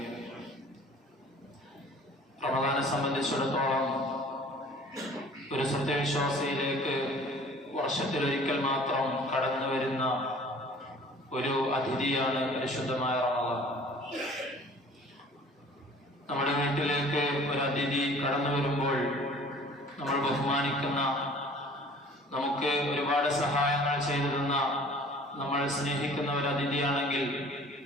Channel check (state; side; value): normal; both; correlation 0.49